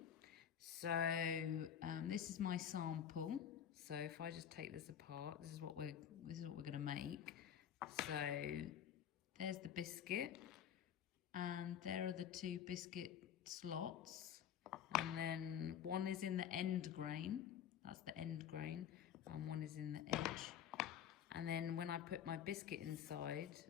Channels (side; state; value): right; quieter; 9.2 dB